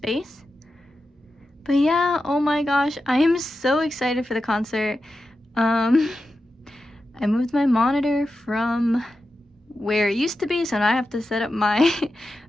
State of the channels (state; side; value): normal; both; correlation 0.91